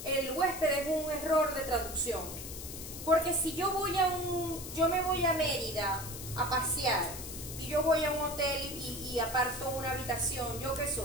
el huésped es un error de traducción. Porque si yo me voy a Mérida a pasear y yo voy a un hotel y aparto una habitación, ¿yo qué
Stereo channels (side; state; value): left; noise; hiss, 10 dB below the sound